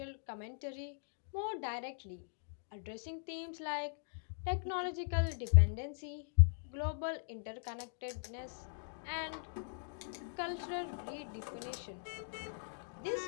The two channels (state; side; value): silent; right; digital silence